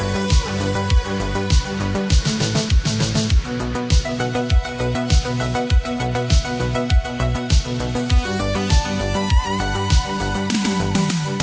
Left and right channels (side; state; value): both; identical; correlation 1.00